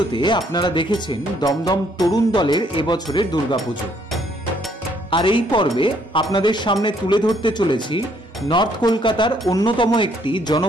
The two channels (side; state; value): both; normal; correlation 0.67